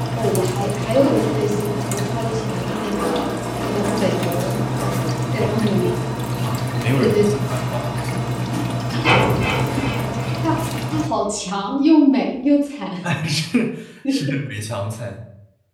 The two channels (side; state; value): both; identical; correlation 1.00